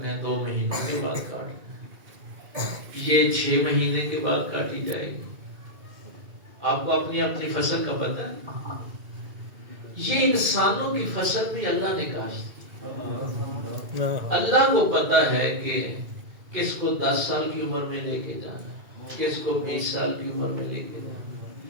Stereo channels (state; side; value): late; left; 2.3 ms